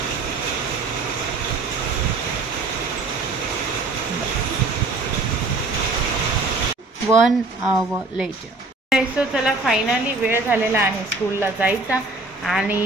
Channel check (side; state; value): left; quieter; 3.3 dB